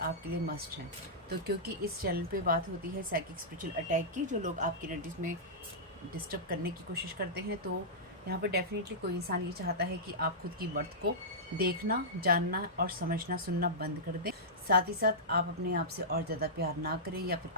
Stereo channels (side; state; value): both; normal; correlation -0.14